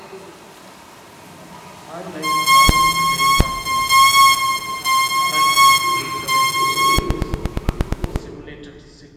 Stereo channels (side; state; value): both; identical; correlation 1.00